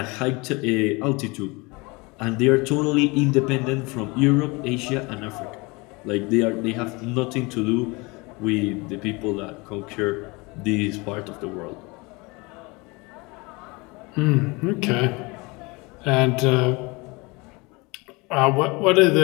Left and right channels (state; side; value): quieter; right; 26.1 dB